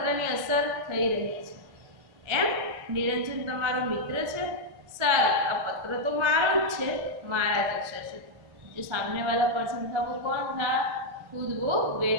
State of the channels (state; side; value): late; left; 1.4 ms